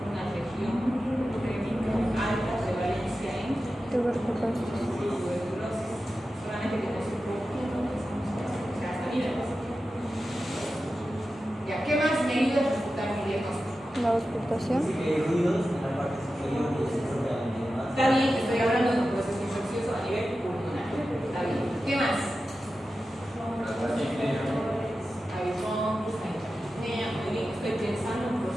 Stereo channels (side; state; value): both; normal; correlation 0.93